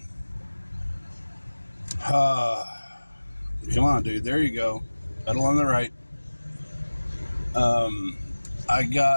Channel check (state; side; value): inverted; both; correlation -1.00